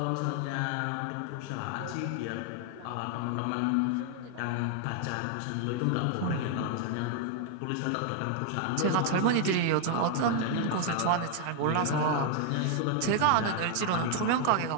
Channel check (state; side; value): different; both; correlation 0.00